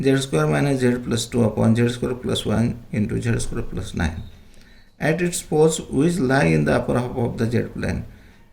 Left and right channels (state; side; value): identical; both; correlation 1.00